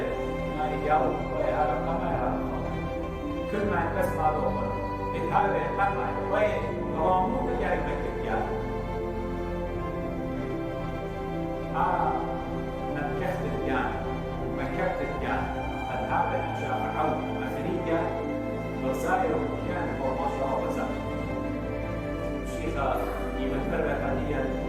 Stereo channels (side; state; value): both; identical; correlation 1.00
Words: ما يجاوب ويا رقم كل ما يتسمع له هذا يتبع وين رامو بجاي مكتب يعني مكتب يعني مكتب يعني هذا أشياء عود أفريقيا وسائر كان هو ما شاء الله وزاد الشيخة يمثل حاليا